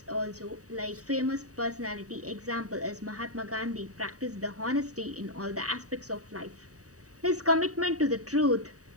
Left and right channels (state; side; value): late; left; 0.66 ms